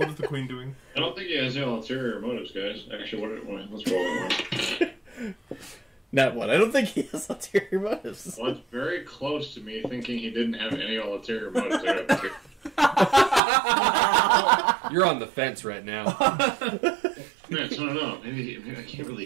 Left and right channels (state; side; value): drops out; left; at 13.4 s